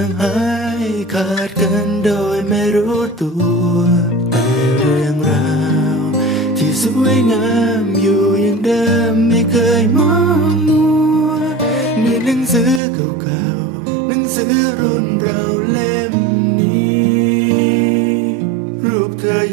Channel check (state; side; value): drops out; left; at 12.8 s